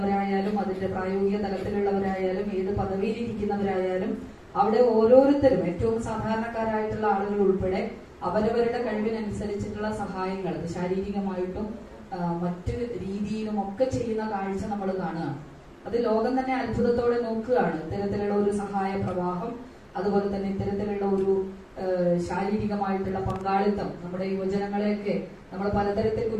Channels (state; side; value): identical; both; correlation 1.00